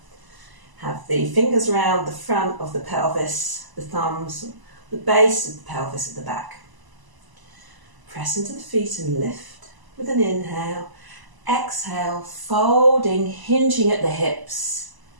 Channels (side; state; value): left; late; 1.0 ms